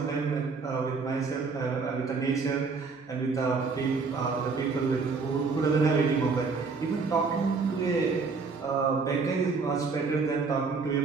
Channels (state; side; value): quieter; left; 4.6 dB